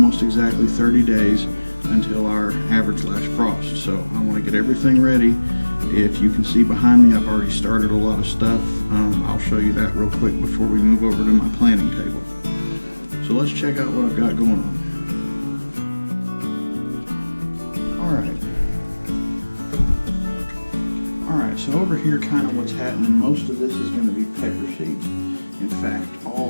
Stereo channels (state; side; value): inverted; both; correlation -1.00